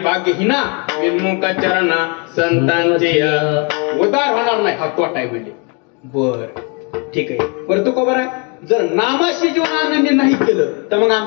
विनमुख चरणा संतांचे उद्धार होणार नाही. हा तोटा आहे म्हणले. बर ठीक आहे. बरं तो खबर आहे जर नामाशी जीवन आनंद नाही केलं तर मग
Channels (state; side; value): quieter; right; 34.1 dB